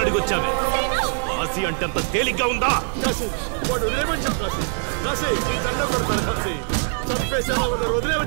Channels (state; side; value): silent; left; 64 dB below the other